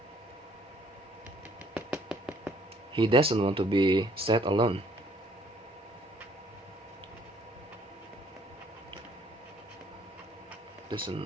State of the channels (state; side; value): normal; both; correlation 0.61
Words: he doesn't want to be set alone.